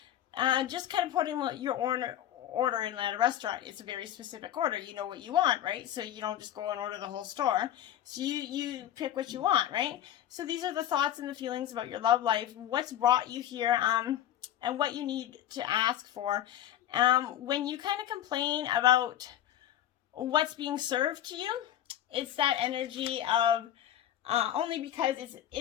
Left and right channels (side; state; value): right; quieter; 11.8 dB